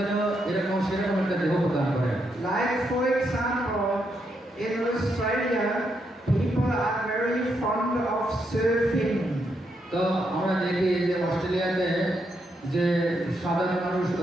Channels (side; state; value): both; normal; correlation 0.79